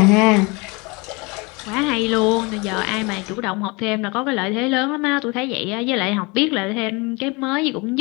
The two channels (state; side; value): quieter; right; 27.3 dB